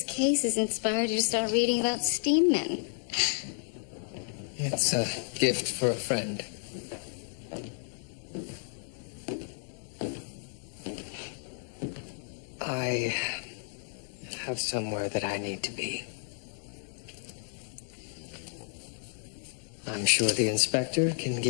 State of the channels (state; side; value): silent; right; 55 dB below the other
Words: case has inspired you to start reading about steam men. It's a gift for a friend. I have somewhere that I need to be. I'm sure the inspector can